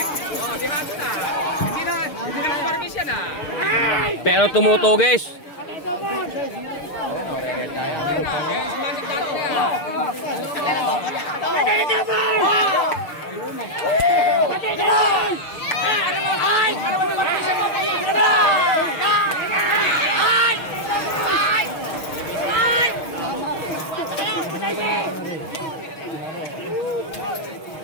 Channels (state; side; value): late; right; 6.5 ms